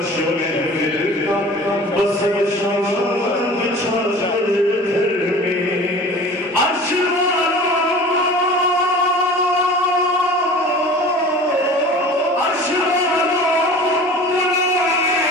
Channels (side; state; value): both; normal; correlation 0.41